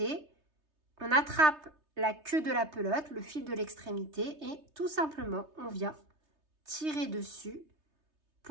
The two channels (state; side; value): late; left; 3.3 ms